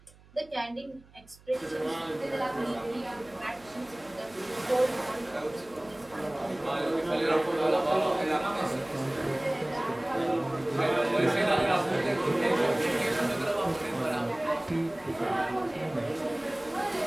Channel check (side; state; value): right; noise; hum, 26 dB below the sound